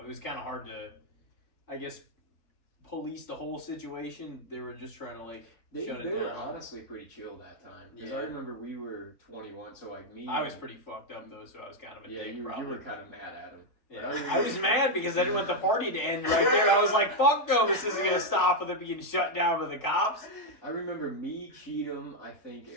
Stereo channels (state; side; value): late; right; 3.5 ms